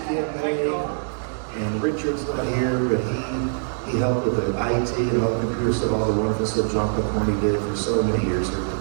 campaign, and Richard's not here, but he helped with the IT and all the computers and all the wonderful stuff John McCorney did for so many years here at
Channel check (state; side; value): silent; left; 63 dB below the other